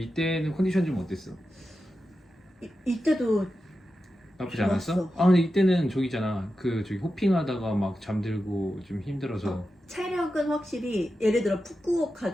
컨디션 좀 어땠어? 이때도 나쁘지 좋았어. 않았어? 근데 이때는 저기잖아. 저기 호핑하다가 막 잠들고 좀 힘들어서. 체력은 확실히 예를 들어 푸꾸옥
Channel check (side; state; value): both; normal; correlation 0.91